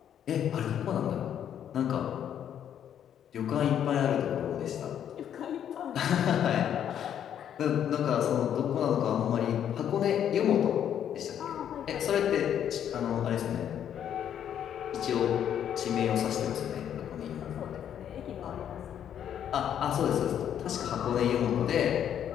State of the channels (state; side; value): quieter; right; 9.6 dB